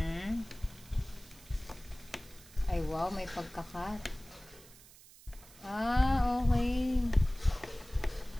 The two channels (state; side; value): noise; right; hiss, 22 dB below the sound